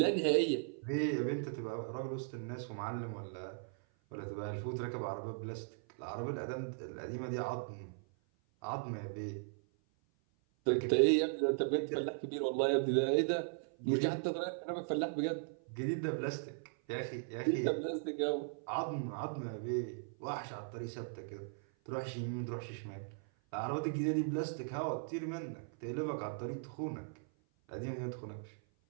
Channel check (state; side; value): silent; left; 52 dB below the other